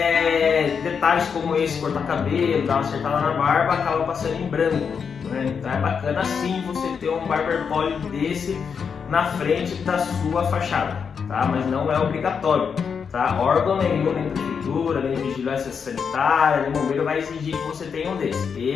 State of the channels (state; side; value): quieter; right; 6.4 dB